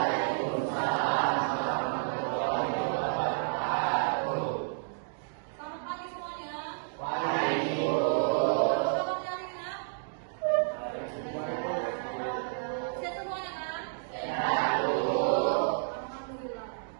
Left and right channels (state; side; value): silent; left; digital silence